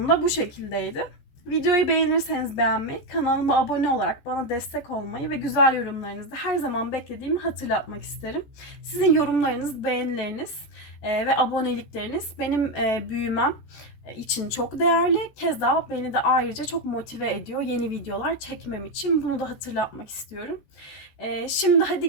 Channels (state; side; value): late; right; 14 ms